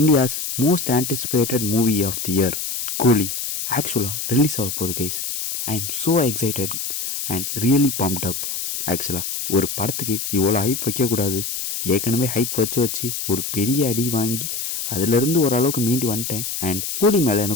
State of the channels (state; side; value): noise; left; hiss, 4 dB below the sound